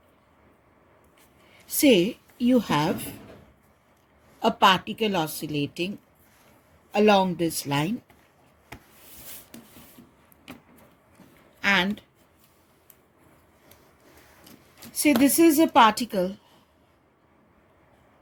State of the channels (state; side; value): identical; both; correlation 1.00